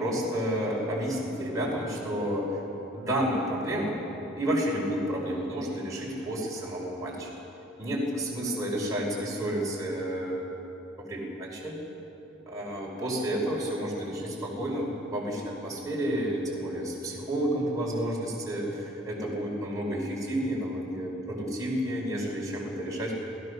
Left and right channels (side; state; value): both; normal; correlation 0.55